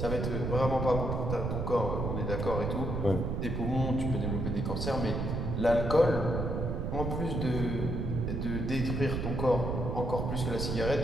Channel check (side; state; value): right; noise; rumble, 1 dB below the sound